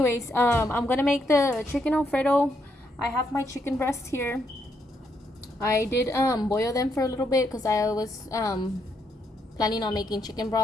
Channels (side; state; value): both; normal; correlation 0.77